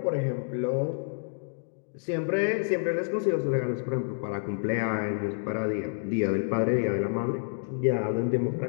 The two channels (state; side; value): silent; right; digital silence